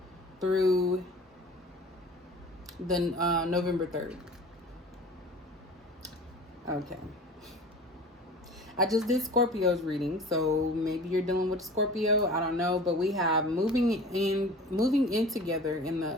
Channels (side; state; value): both; normal; correlation 0.41